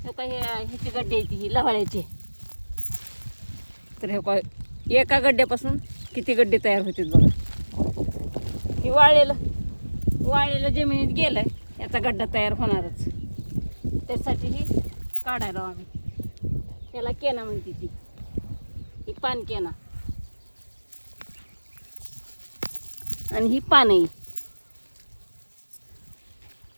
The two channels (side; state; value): both; inverted; correlation -1.00